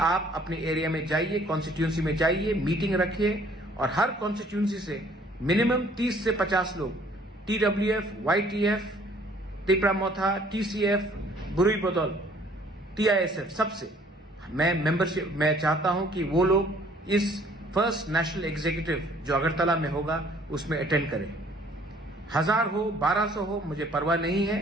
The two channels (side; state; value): both; normal; correlation 0.58